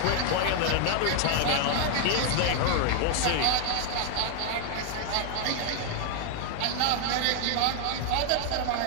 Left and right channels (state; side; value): different; both; correlation 0.00